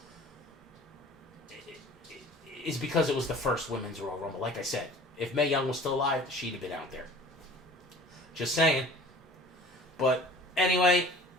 is because it was the first women's Royal Rumble. Like I said, if Mae Young was still alive, she'd have been out there. Just saying. But anyway,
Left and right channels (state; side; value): normal; both; correlation 0.45